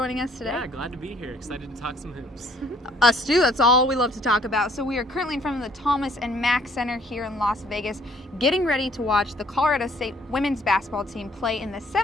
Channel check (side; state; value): both; normal; correlation 0.61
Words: us today. Yeah, glad to be here. Excited to talk some hoops. Us too, that's all we love to talk about. So we are currently in front of the Thomas and Mack Center here in Las Vegas, getting ready to watch the Colorado State women's basketball team play in the